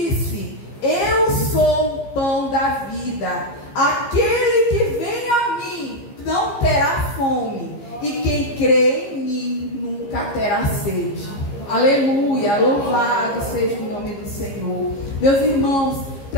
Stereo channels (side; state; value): right; late; 15 ms